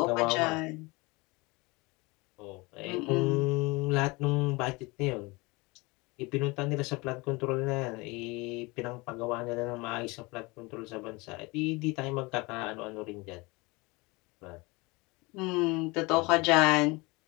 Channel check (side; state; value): right; quieter; 25.1 dB